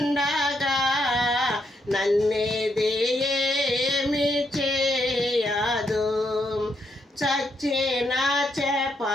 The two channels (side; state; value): both; normal; correlation 0.77